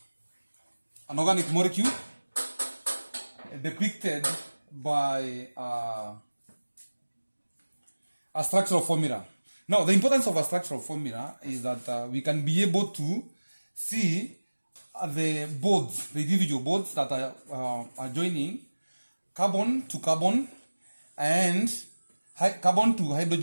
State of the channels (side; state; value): both; inverted; correlation -1.00